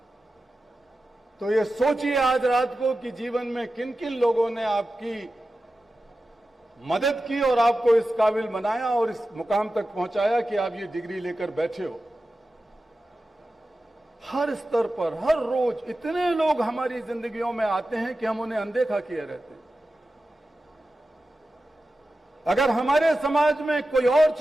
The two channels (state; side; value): normal; both; correlation 0.93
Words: तो ये सोचिए आज रात को कि जीवन में किन किन लोगों ने आपकी मदद की और आपको इस काबिल बनाया और इस मुकाम तक पहुंचाया कि आप ये डिग्री लेकर बैठे हो। हर स्तर पर, हर रोज इतने लोग हमारी जिंदगियों में आते हैं कि हम उन्हें अनदेखा किए रहते हैं। अगर हमारे समाज में कोई और